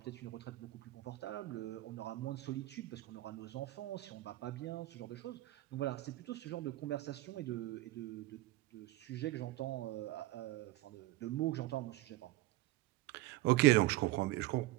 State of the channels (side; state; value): left; quieter; 17.6 dB